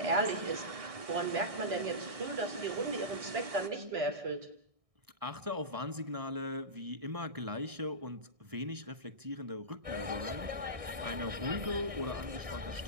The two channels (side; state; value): left; late; 1.6 ms